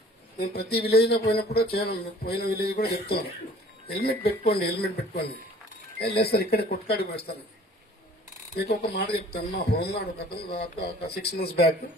నేను ప్రతి విలేజ్ లో పోయినప్పుడు పోయిన విలేజ్ కూడా చెప్తున్నాను, హెల్మెట్ పెట్టుకోండి. లేదు సార్ ఇక్కడే కొట్టుకాడికి వేస్తాను. మీకు ఒక మాట చెప్తాను, మా హోంగార్డ్ ఒక 6 months బ్యాక్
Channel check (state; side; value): normal; both; correlation 0.51